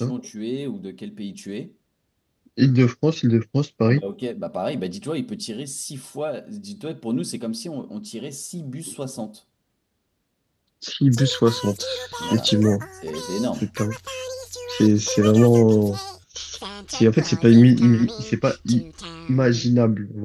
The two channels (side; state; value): both; identical; correlation 1.00